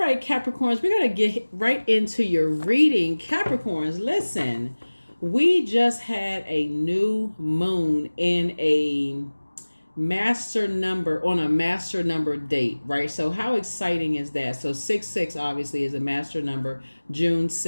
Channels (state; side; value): inverted; both; correlation -1.00